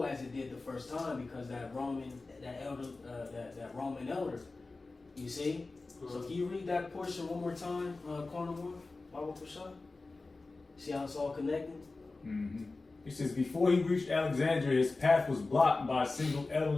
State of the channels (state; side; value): quieter; right; 3.5 dB